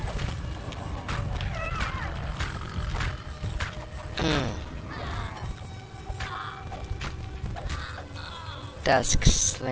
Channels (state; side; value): identical; both; correlation 1.00